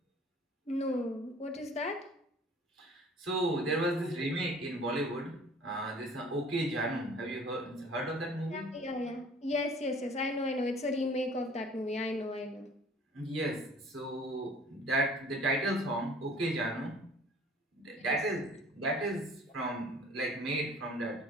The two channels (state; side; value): normal; both; correlation 0.50